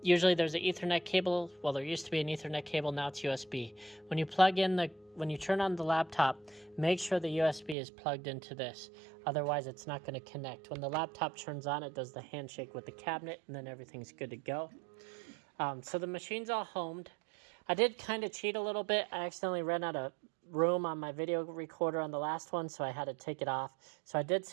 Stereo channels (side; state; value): left; drops out; at 7.8 s